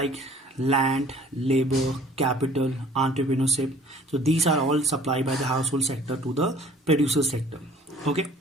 land, labor, capital, entrepreneurship, so these are all supplied by the household sector to the producer sector. Okay,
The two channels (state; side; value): normal; both; correlation 0.52